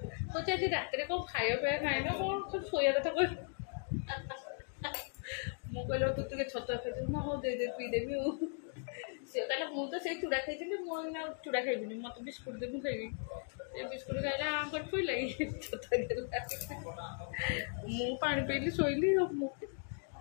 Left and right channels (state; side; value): silent; right; 53 dB below the other